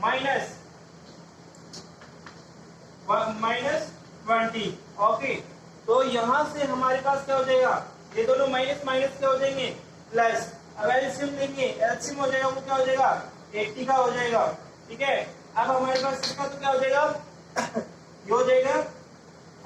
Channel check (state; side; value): identical; both; correlation 1.00